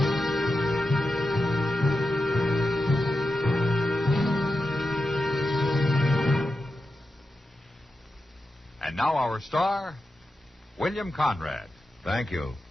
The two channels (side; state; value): both; normal; correlation 0.90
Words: And now our star, William Conrad. Thank you.